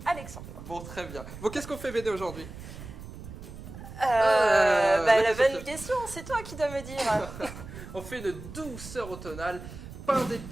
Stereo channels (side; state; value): right; noise; rumble, 13 dB below the sound